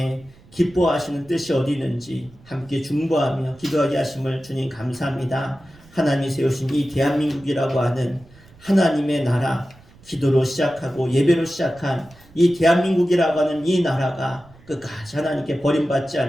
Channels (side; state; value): right; noise; rumble, 25 dB below the sound